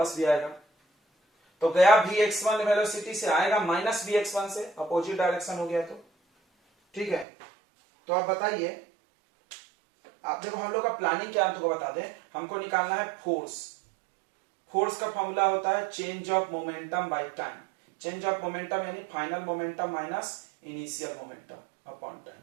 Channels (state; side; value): drops out; left; at 7.2 s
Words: भी आएगा। तो गया vx1 वेलोसिटी से, आएगा माइनस vx1 से, अपोजिट डायरेक्शन हो गया। तो ठीक है, तो आप बताइए, आप देखो हम लोग का प्लानिंग क्या है, तुमको बता दें। हमको निकालना है फोर्स। फोर्स का फॉर्मूला होता है change of momentum by time. Change of momentum यानी final momentum minus initial momentum upon time,